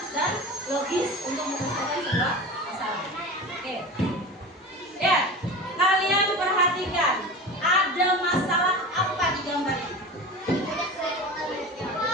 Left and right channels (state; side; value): normal; both; correlation 0.31